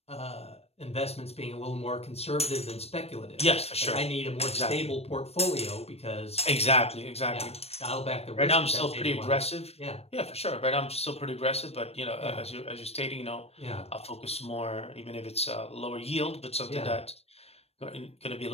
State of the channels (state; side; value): late; right; 0.30 ms